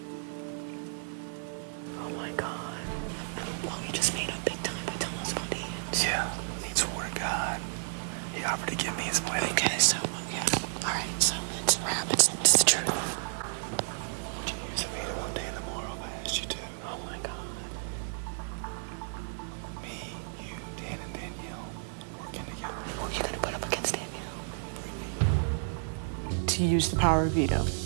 Oh my God. Well, we just made up big time by telling us about Ian. Yeah, he swore to God. He offered to give me his wedding. Okay, so, yeah. All right, so it's a wrap. It's the truth. Would you use a veto all day in the morning if I asked you to? Oh my God. Me, you, Dan, and Danielle working together. Who are you gonna put up against Danielle? To use the power of veto.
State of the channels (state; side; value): silent; left; digital silence